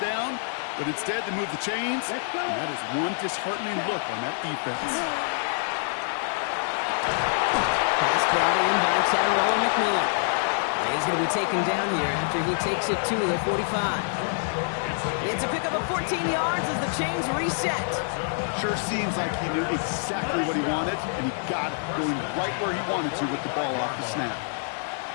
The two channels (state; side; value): silent; right; 61 dB below the other